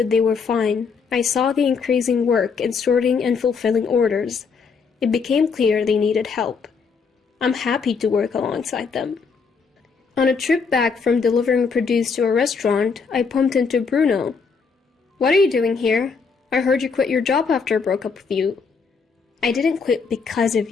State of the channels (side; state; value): right; quieter; 5.3 dB